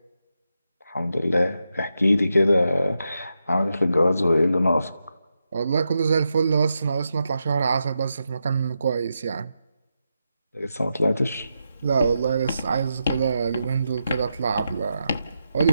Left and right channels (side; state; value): both; inverted; correlation -0.86